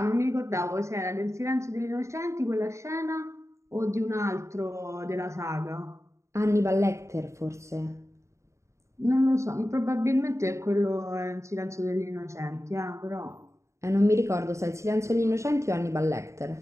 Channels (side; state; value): left; late; 0.14 ms